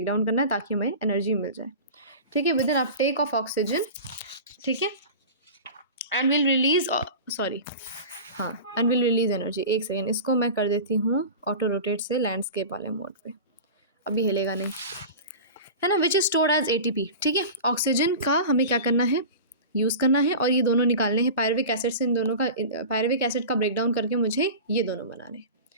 डाउन करना है ताकि हमें एनर्जी मिल जाए। ठीक है, with an uptake of oxygen. ठीक है, and will release, and will release energy. एक सेकेंड, इसको मैं कर देती हूँ ऑटो रोटेट से लैंडस्केप वाले मोड पे, अभी हिलेगा नहीं, है ना। Which is stored as ATP। ठीक है, ऑक्सीजन का हमें क्या करना है, यूज़ करना है, और ये दोनों निकालने हैं पायरुविक एसिड से। इन दोनों का, पायरुविक एसिड का ब्रेकडाउन करके मुझे ये दोनों बनाने हैं।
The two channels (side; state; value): both; inverted; correlation -0.33